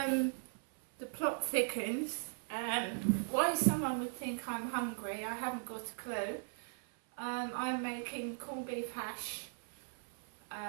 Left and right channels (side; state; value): left; silent; 52 dB below the other